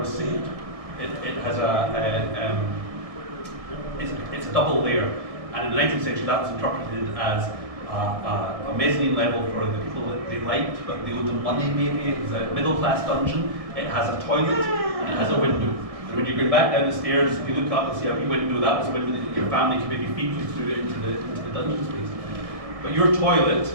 saved. It has it's a double layer, and in the 19th century that was interpreted as a mezzanine level for the people that they liked, but they owed them money maybe. It was a middle class dungeon. It has a toilet and it has a window. And when you go back down the stairs, if you look up and see a wee window, that was a window that your family could maybe feed you through into the dungeon space. But your toilet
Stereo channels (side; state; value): left; late; 1.7 ms